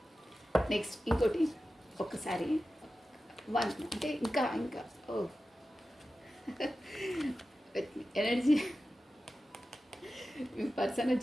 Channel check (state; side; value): normal; both; correlation 0.93